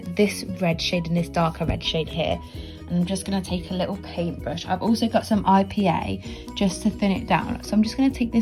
this red shade and this darker red shade here. And I'm just going to take a little paintbrush. I've also got some IPA just to thin it down. So I'm just going to take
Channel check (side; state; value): both; identical; correlation 1.00